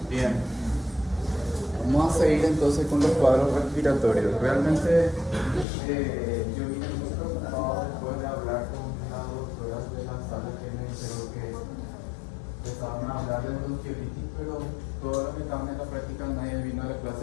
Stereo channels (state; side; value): drops out; right; at 5.7 s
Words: Bien. Vamos a seguir entonces con los cuadros respiratorios. Realmente yo vine muy preocupado después de hablar con las doctoras de la sala que me dijeron que empezaban a hablar de bronquiolitis, pero todos los que estaban en la práctica nadie vino a la clase